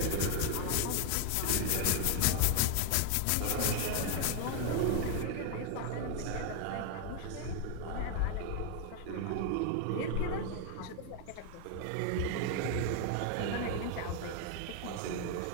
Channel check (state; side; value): different; both; correlation 0.00